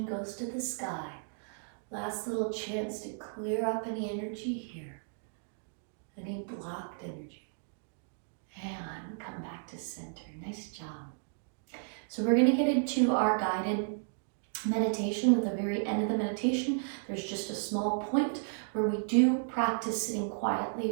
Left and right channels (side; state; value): left; silent; digital silence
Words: goes to the sky. Last little chance to clear up any energy here, any blocked energy. And come back to center. Nice job. So we're going to get into our guided meditation. At the very end of the meditation, there's just a small point where we do practice sitting quietly,